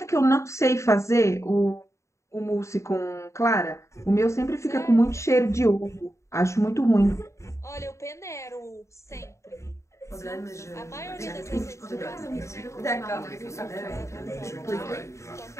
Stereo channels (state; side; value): late; right; 0.14 ms